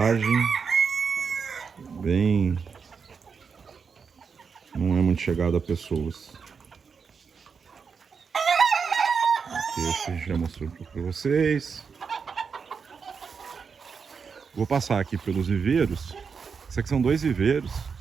não é muito chegado a pessoas. Aqui esse a gente já mostrou um pouco para vocês. Vou passar aqui pelos viveiros. Isso aqui são 2 viveiros.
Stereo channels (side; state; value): left; quieter; 5.8 dB